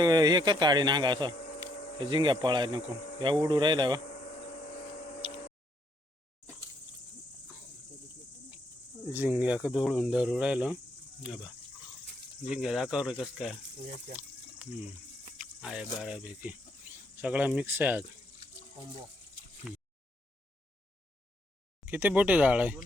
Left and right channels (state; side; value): normal; both; correlation 0.72